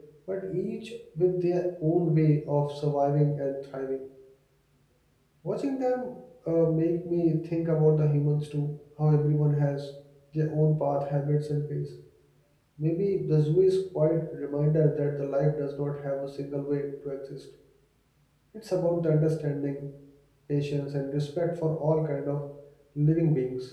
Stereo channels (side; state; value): both; identical; correlation 1.00